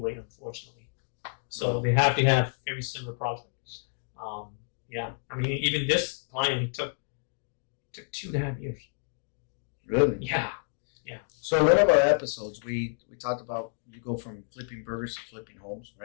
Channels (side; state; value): right; silent; 58 dB below the other